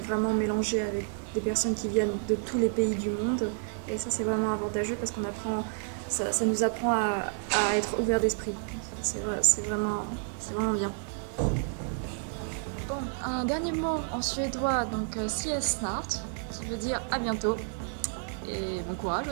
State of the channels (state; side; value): silent; left; 56 dB below the other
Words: mélangé avec des personnes qui viennent de tous les pays du monde. Et ça, c'est vraiment avantageux parce qu'on apprend, ça nous apprend à être ouvert d'esprit. C'est vraiment bien. Bon, un dernier mot en suédois, donc ses snart, qui veut dire à bientôt. Et bon courage